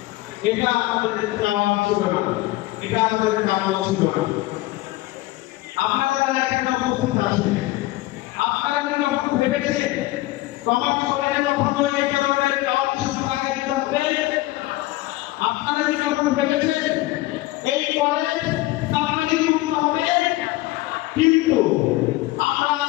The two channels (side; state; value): right; quieter; 18.4 dB